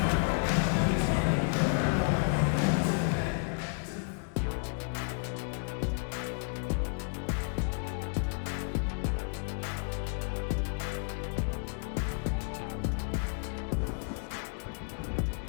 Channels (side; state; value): right; silent; 57 dB below the other